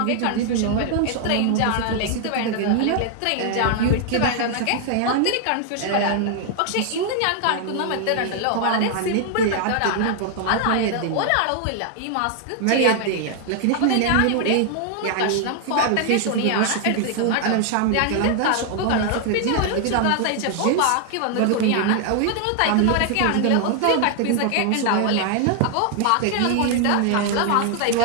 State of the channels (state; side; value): different; both; correlation 0.00